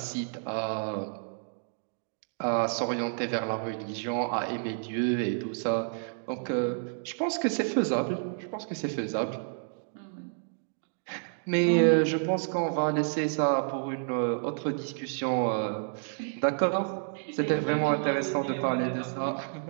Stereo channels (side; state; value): left; silent; digital silence